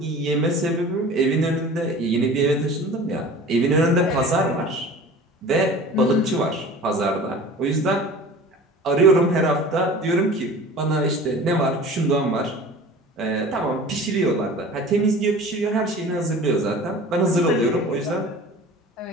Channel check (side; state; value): both; normal; correlation 0.40